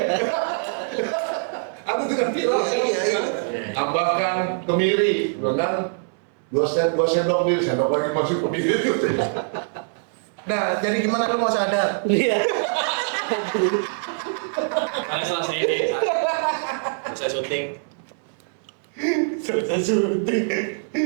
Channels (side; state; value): left; silent; 62 dB below the other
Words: Aku juga viral, Iya. tambahkan kemiri, kan? 2 sendok kemiri, sendok lagi masuk kemiri itu. Nah, jadi gimana lu mau sadar? Iya. Karena selesai ini, selesai syuting. Selesai syuting.